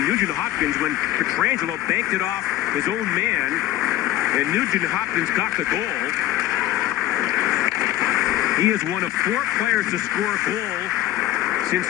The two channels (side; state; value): right; quieter; 14.1 dB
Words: Nugent-Hopkins, when Pietrangelo banked it off his own man, and Nugent-Hopkins got the goal. He is one of 4 players to score a goal since